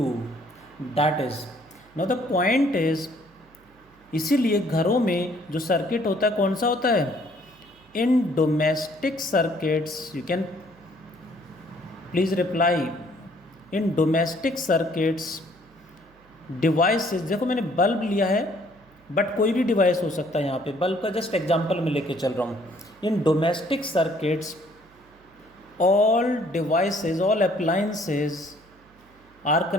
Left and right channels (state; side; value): noise; right; hum, 29 dB below the sound